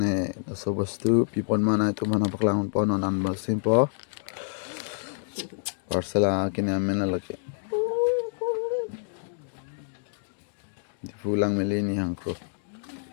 so bostu pipon mana itu mana paklang pon non basim po parsel kini amena lagi di pulang melini hangko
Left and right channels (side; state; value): right; silent; digital silence